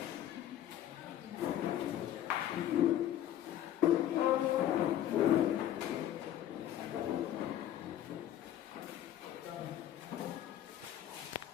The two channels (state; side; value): quieter; right; 11.7 dB